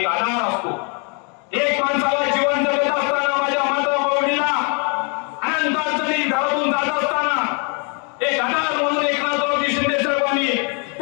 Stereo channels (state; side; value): quieter; right; 35.7 dB